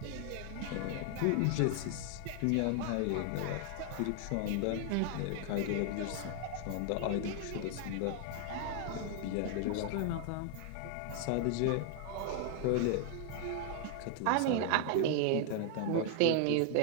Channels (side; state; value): both; different; correlation 0.00